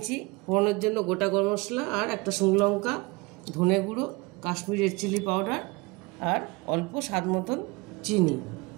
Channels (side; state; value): left; quieter; 25.1 dB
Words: ফোড়নের জন্য গোটা গরম মশলা আর একটা শুকনো লঙ্কা, ধনে গুঁড়ো, কাশ্মীরি রেড চিলি পাউডার আর অল্প স্বাদ মতন চিনি।